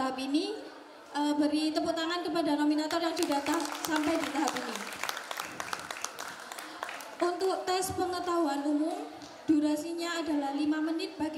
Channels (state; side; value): identical; both; correlation 1.00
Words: ini. Beri tepuk tangan kepada nominator yang sudah sampai di tahap ini. Untuk tes pengetahuan umum, durasinya adalah 5 menit bagi